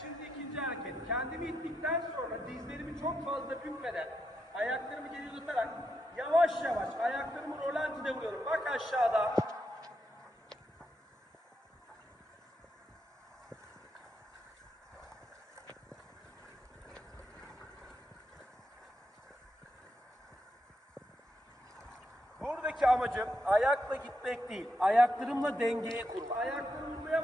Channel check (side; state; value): both; normal; correlation 0.83